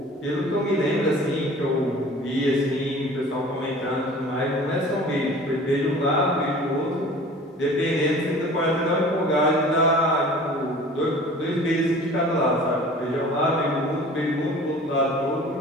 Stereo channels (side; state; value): both; normal; correlation 0.44